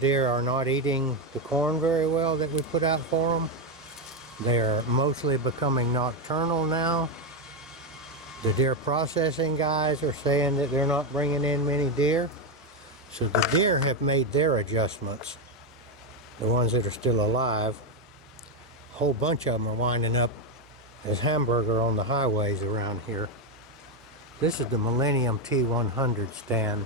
are not eating the corn very well that we put out for them. They are mostly becoming nocturnal now. The deer processing guys are saying that they're not bringing in many deer. So the deer have made their adjustments. The ones that are still alive. A whole bunch of them are winding up as hamburger on the highways around here. This is the Millennium T-100 stand.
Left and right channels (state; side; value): normal; both; correlation 0.07